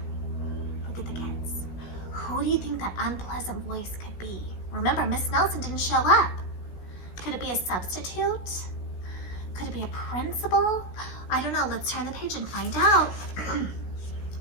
Look at the kids. Who do you think that unpleasant voice could be? Remember, Miss Nelson didn't show up. Could it be a substitute? Could it be a principal? I don't know. Let's turn the page and find out.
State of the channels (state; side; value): late; right; 16 ms